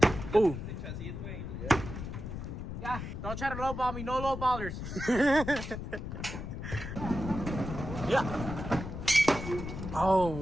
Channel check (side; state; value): left; noise; rumble, 7 dB below the sound